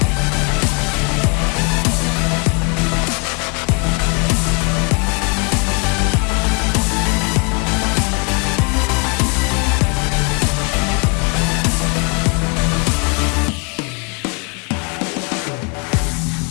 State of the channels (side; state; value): right; quieter; 34.7 dB